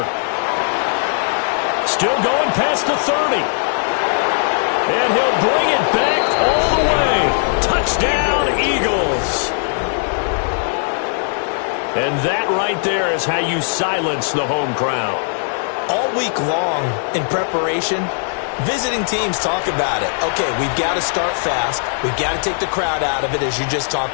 Still going past the 30. And he'll bring it back all the way. Touchdown, Eagles. And that right there is how you silence the home crowd. All week long in preparation, visiting teams talk about it. Okay, we've got to start fast. We've got to take the crowd out of it, as you just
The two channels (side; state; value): right; silent; 67 dB below the other